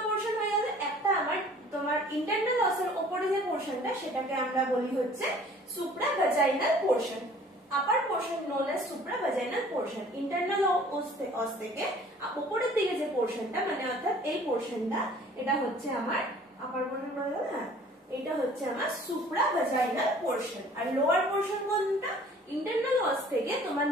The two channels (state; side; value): normal; both; correlation 0.52